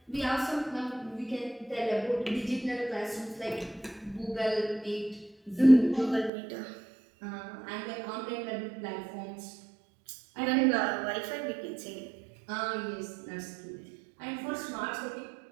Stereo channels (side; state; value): left; drops out; at 6.3 s